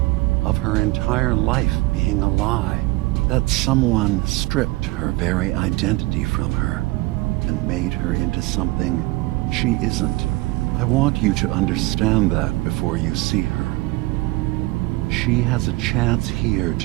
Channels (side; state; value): left; quieter; 21.4 dB